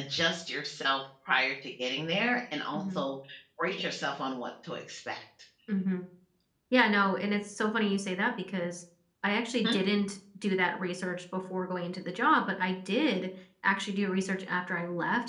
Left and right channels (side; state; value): both; identical; correlation 1.00